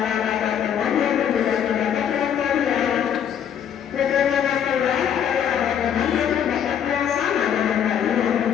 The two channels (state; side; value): quieter; right; 8.9 dB